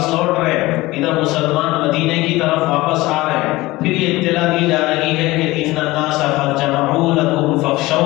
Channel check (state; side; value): quieter; right; 19.6 dB